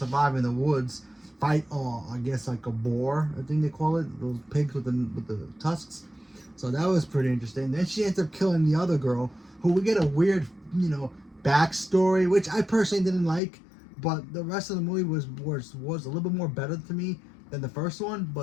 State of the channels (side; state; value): right; drops out; at 13.4 s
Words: in the woods, fight, I guess like a boar, I think they call it, those pigs with the tusks. So that was pretty interesting. Then she ends up killing the other girl, who we get a weird, backstory, which I personally didn't like, but the rest of the movie was a little bit more better to me than the first one,